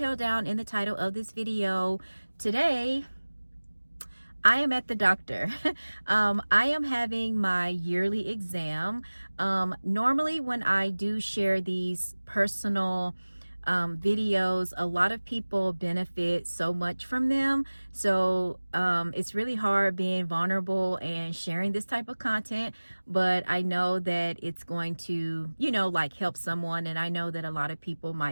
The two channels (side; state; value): both; inverted; correlation -1.00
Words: down in the title of this video, today I am at the doctor. I am having my yearly exam. Normally when I do share these personal videos, a lot of people benefit so much from them. So it's really hard being vulnerable and sharing this type of content, but I know that it's going to, like help someone. And I know that a lot of people